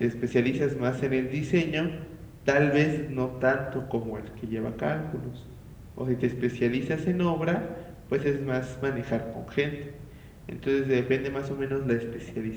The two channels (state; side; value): identical; both; correlation 1.00